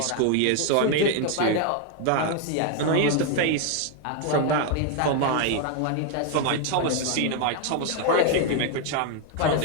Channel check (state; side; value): different; both; correlation 0.01